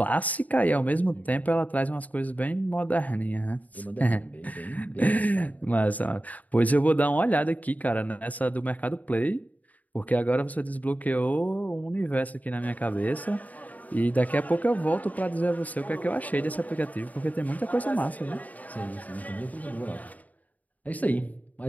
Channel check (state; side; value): late; right; 0.075 ms